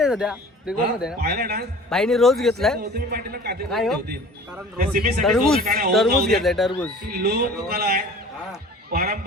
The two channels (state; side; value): normal; both; correlation 0.44